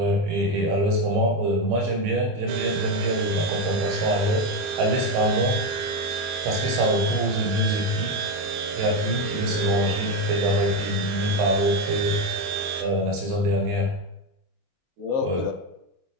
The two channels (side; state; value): left; late; 24 ms